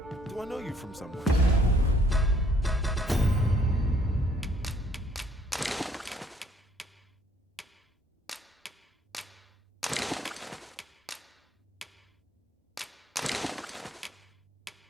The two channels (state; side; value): normal; both; correlation 0.63